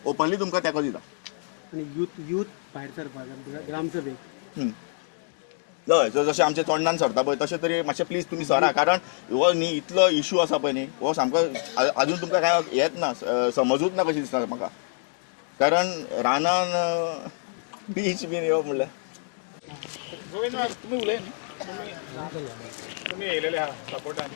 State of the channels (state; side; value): silent; right; digital silence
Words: ओपनली तुमकां तेंको दिता आणि यूथ भायर सरपाक ग्रामसभेक हय जशें आमचे तोंडान सरता पळय तशें तरी मातशें प्लीज तुमी सरा कारण हो न्ही इतलो इशू आसा पळय न्ही हो सामको आजून तुमकां काय येत ना समजूच ना कशी दिसता म्हाका कारण रानान बीच बीन येवप म्हणल्यार गोविंद तुम्ही उलय न्ही तुम्ही येयलेले आहा सपोर्टान